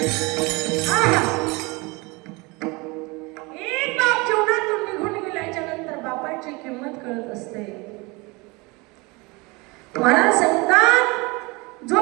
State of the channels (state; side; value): quieter; left; 26.0 dB